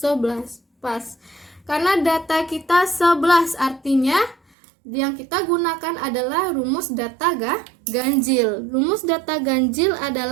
Pas. Karena data kita 11, artinya yang kita gunakan adalah rumus data ganjil. Rumus data ganjil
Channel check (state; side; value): drops out; left; at 4.4 s